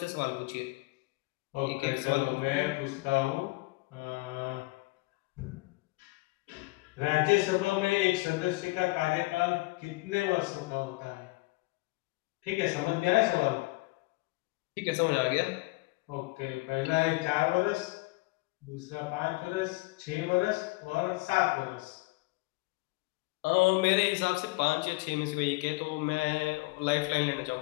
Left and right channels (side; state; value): right; quieter; 23.5 dB